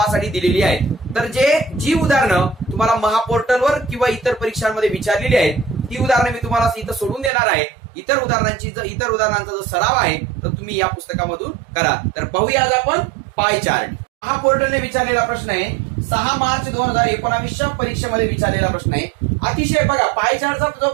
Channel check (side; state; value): left; drops out; at 7.3 s